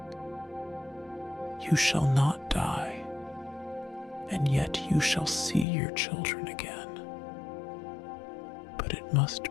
"You shall not die, and yet you shall see your children again. But it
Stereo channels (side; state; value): right; drops out; at 5.7 s